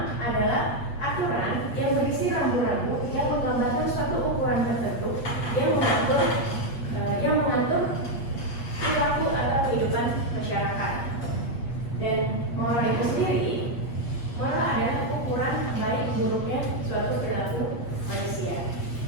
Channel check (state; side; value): late; right; 8.3 ms